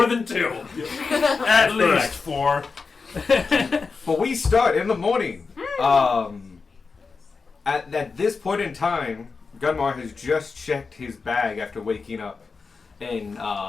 than 2. At least 4. But we start in the morning. At this point in time, Gunmar has just checked his bag after waking up, and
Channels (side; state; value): right; quieter; 4.7 dB